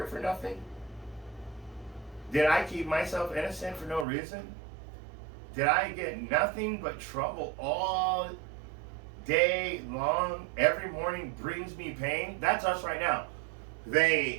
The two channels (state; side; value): drops out; left; at 4.0 s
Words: for nothing? Did I keep myself innocent for no reason? Did I get nothing but trouble all day long? Every morning brings me pain. That's us right now.